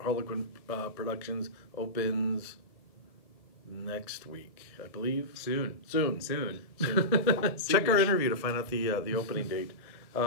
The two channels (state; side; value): late; right; 1.6 ms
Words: Productions. Opens next week, I believe. Soon. Check our interview to find out the opening date.